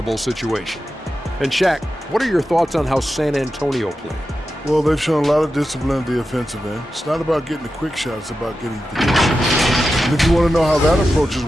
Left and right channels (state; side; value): normal; both; correlation 0.91